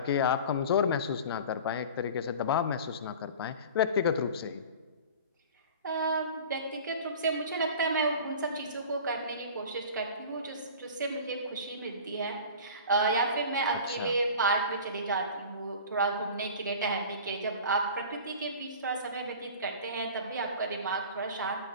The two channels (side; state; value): both; inverted; correlation -0.39